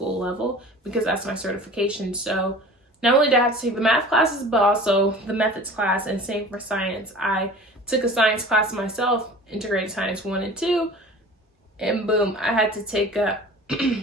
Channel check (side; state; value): both; normal; correlation 0.41